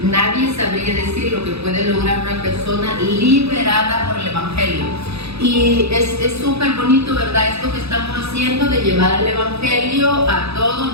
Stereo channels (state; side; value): late; left; 0.79 ms